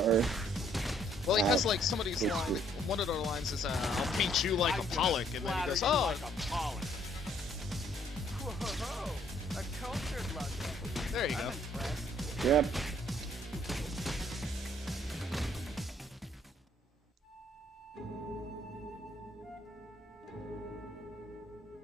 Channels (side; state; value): both; normal; correlation 0.64